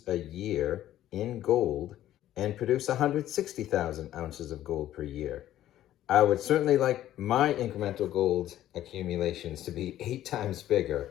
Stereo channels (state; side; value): quieter; right; 12.9 dB